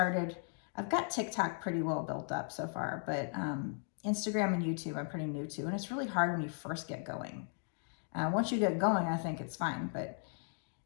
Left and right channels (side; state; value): right; silent; 53 dB below the other